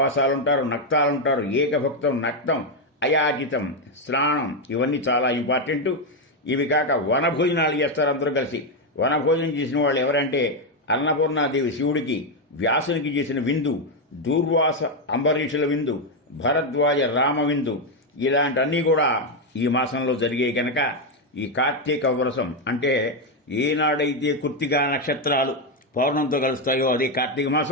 నక్తాలుంటారు, ఏకభక్తం, నక్తం, అయాచితం, స్నానం, ఇవన్నీ చాలా ఇంపార్టెంట్. ఇవి కాక వనభోజనాలు చేస్తారు అందరూ కలిసి. వనభోజనం చేసిన వాళ్ళు ఎవరంటే అన్నపూర్ణాదేవి శివుడికి, వ్యాసునికి చేసిన విందు, దూర్వాస అంబరీషుల విందు, భరద్వాజ రామ విందు, ఇలాంటివన్నీ కూడా ఈ మాసంలో జరిగాయి కనుక ఈ కార్తీక వ్రతం అంటే ఏనాడైతే కృత్తికా నక్షత్రాలు పౌర్ణంతో కలుస్తాయో అదే కార్తీక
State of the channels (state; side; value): normal; both; correlation 0.05